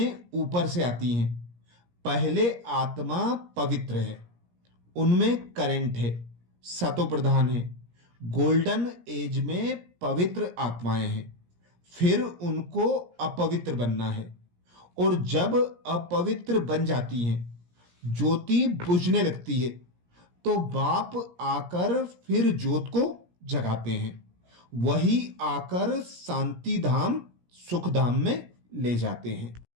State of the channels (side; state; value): left; late; 17 ms